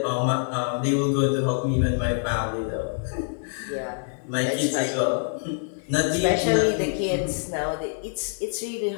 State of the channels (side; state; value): right; silent; 61 dB below the other